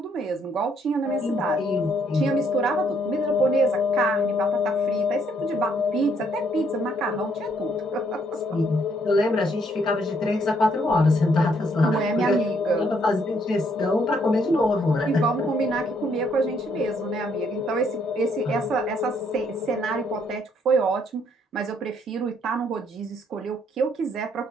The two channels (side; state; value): both; normal; correlation 0.69